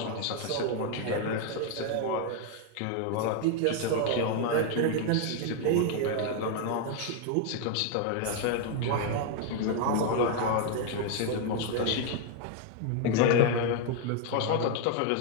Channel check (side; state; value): both; different; correlation 0.00